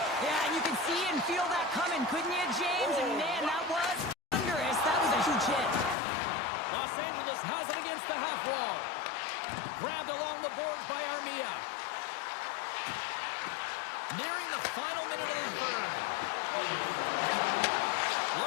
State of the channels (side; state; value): right; drops out; at 6.0 s